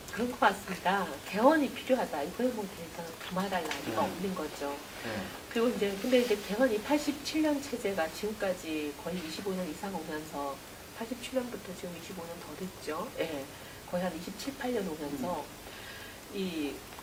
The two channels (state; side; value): identical; both; correlation 1.00